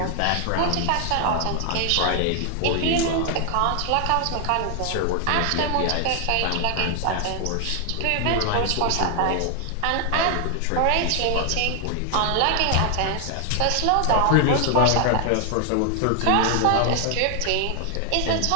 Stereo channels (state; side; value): different; both; correlation 0.00